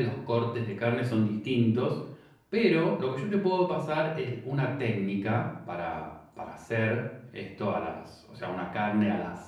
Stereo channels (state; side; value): identical; both; correlation 1.00